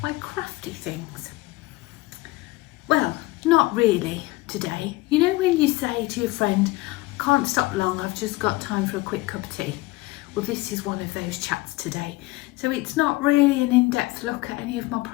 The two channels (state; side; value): quieter; right; 20.4 dB